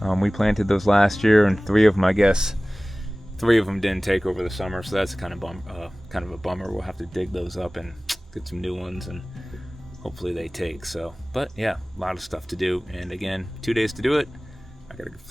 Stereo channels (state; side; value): normal; both; correlation 0.98